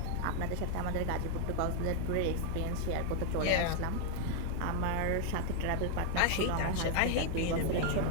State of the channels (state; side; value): different; both; correlation 0.00